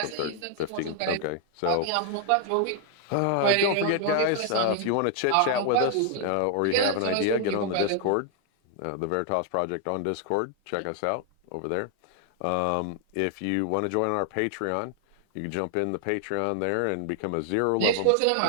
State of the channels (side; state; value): both; different; correlation 0.00